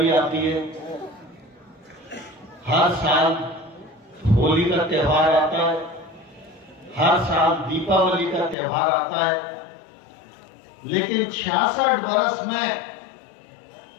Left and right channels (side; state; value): right; drops out; at 8.6 s